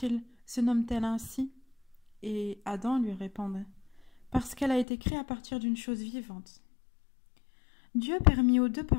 se nomme-t-elle ainsi ?» Et Adam lui répondit, « Parce qu'elle a été créée à partir d'une chose vivante. » Dieu permit aux deux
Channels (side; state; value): right; drops out; at 4.9 s